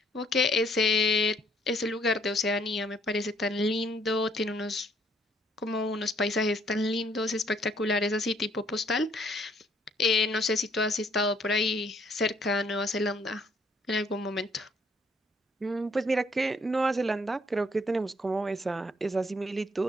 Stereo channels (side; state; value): both; normal; correlation 0.66